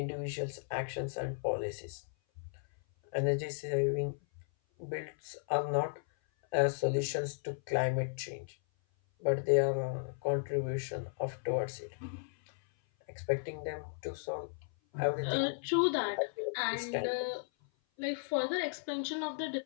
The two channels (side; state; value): right; silent; 54 dB below the other